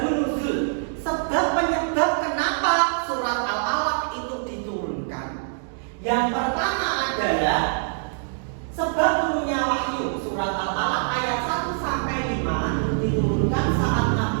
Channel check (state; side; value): silent; left; digital silence